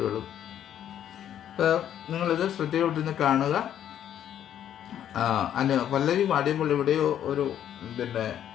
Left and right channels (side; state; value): right; quieter; 10.4 dB